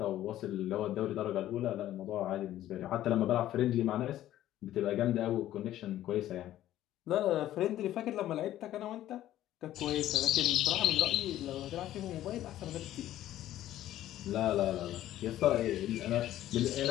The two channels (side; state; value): right; quieter; 13.2 dB